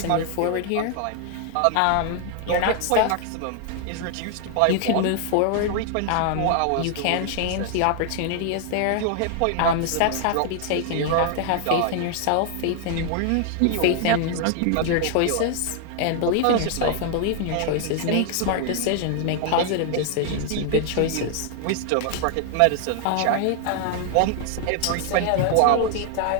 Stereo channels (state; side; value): different; both; correlation 0.00